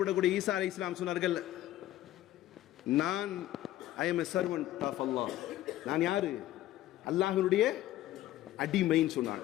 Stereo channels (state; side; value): quieter; right; 14.2 dB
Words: ஈசா அலைஹிஸ்ஸலாம் சொன்னார்கள், நான் I am a servant of Allah. நான் யாரு? அல்லாஹ்வுடைய அடிமைன்னு